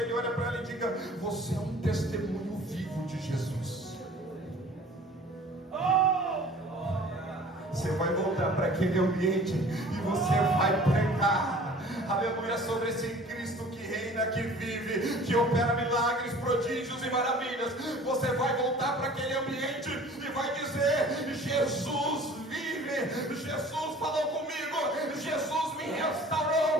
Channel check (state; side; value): normal; both; correlation 0.47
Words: ele, olha para ela e diga: você é um testemunho vivo de Jesus. Você vai voltar para aquele ambiente e você vai pregar, aleluia, sobre esse Cristo que reina, que vive, que opera milagres, prodígios e maravilhas. Você vai voltar para aquele ambiente e vai dizer: Jesus vive, Jesus falou comigo, Jesus me